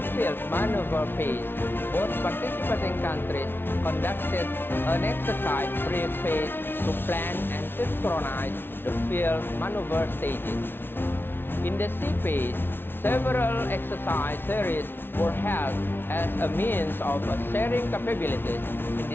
field maneuver phase, both participating countries conducted an exercise brief phase to plan and synchronize the field maneuver stages. In the sea phase, several exercise series were held as a means of sharing capabilities in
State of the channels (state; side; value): late; right; 0.11 ms